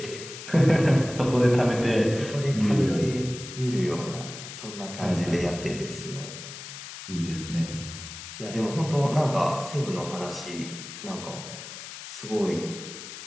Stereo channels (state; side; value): noise; left; hiss, 12 dB below the sound